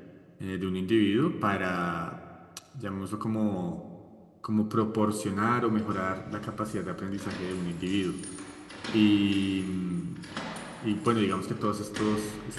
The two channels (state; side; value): identical; both; correlation 1.00